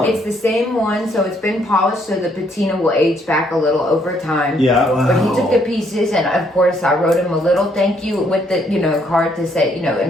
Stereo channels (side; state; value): both; normal; correlation 0.69